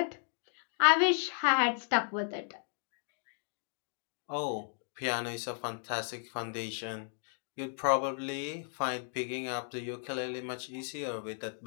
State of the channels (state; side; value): silent; right; digital silence